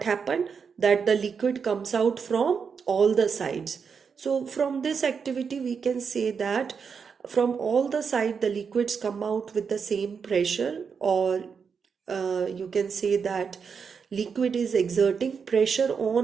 happened, that the liquid comes out from all the sides. So from this activity we can say that from all the side the liquids come out with the same pressure, or you can say that liquid is exerting pressure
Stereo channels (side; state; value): left; quieter; 6.1 dB